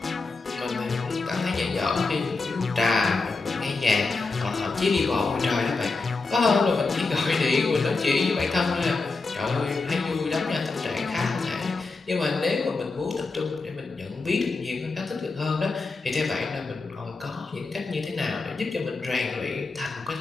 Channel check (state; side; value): quieter; right; 3.9 dB